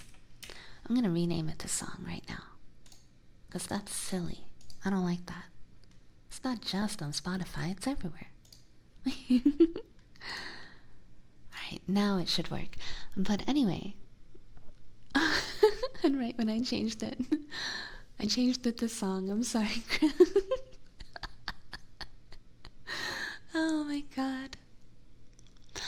I'm gonna rename it to song right now. Because that's silly. I don't like that. It's not just on Spotify, it's everywhere. Alright, now it should work. But anyway. And right when I changed it to song. I'm sorry, Chris. Oh my god.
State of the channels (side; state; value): both; identical; correlation 1.00